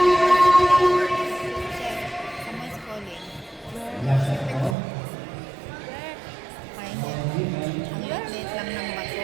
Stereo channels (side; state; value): left; drops out; at 4.8 s